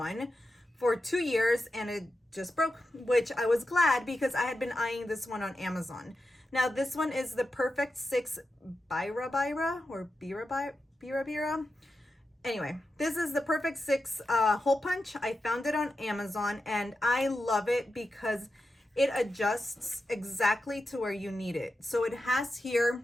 for 2 years, and it just broke, which I was glad because I had been eyeing this one on Amazon. Now this one is the Perfect 6 Bira or Bira. Anyway, this is the Perfect 6 hole punch. I found it on Amazon, and I love it because it adjusts exactly to where you need it. So it has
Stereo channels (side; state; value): both; normal; correlation 0.90